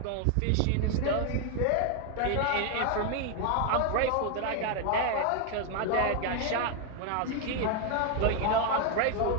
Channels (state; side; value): different; both; correlation 0.01